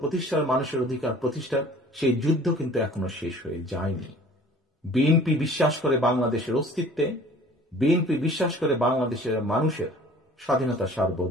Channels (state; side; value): normal; both; correlation 0.48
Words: মানুষের অধিকার প্রতিষ্ঠার, সেই যুদ্ধ কিন্তু এখনো শেষ হয়ে যায়নি। বিএনপি বিশ্বাস করে বাংলাদেশের অস্তিত্বে, বিএনপি বিশ্বাস করে বাংলাদেশের মানুষের স্বাধীনতা,